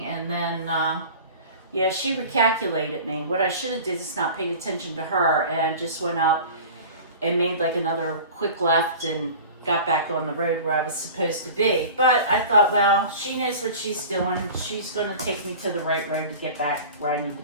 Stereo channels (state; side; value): inverted; both; correlation -0.38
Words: then yeah, she recalculated me. What I should have did is not paid attention to her and just went up and made like another quick left and got back on the road where I was supposed to be. But I thought, well, she knows what she's doing. She's going to take me to the right road to get back where I need to